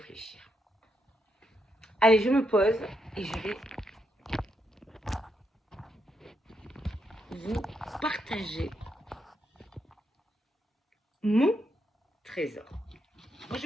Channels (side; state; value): both; normal; correlation 0.80